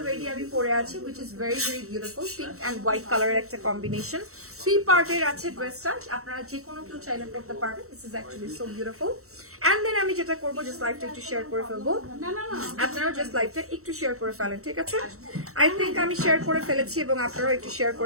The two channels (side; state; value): left; late; 0.64 ms